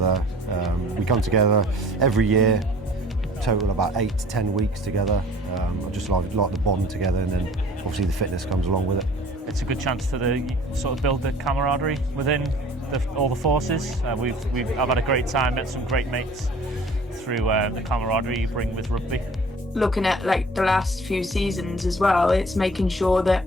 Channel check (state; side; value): normal; both; correlation 0.49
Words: We come together every year, total about 8 to 10 weeks together. I just like the bond together, and then obviously the fitness comes along with it. It's a good chance to sort of build the camaraderie within all the forces. I've had a great time, met some great mates through the camaraderie you bring with rugby. Looking at like the last few seasons as well, it's making sure that